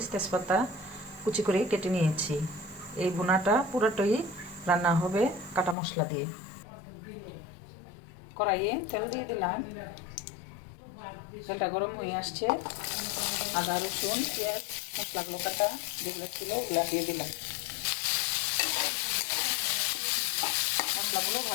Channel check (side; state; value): right; drops out; at 5.8 s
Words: তেজপাতা কুচি করে কেটে নিয়েছি। এই ভুনাটা পুরোটাই রান্না হবে কাটা মশলা দিয়ে। কড়াইয়ে তেল দিয়ে দিলাম, তেলটা গরম হয়ে আসছে। আদা, রসুন, পেঁয়াজ, মশলাগুলো কাটা যেগুলো ছিল ওগুলো দিয়ে দিলাম। মশলাগুলো